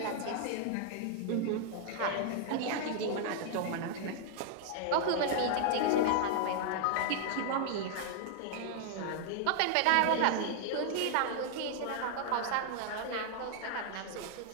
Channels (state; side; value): different; both; correlation 0.00